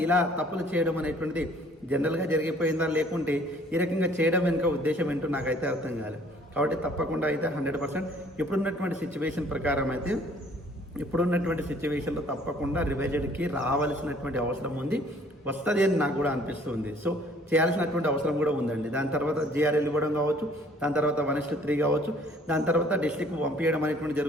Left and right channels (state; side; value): normal; both; correlation 0.57